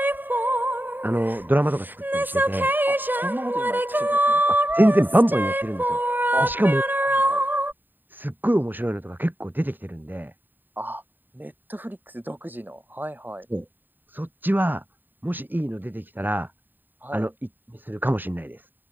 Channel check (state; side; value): late; left; 0.091 ms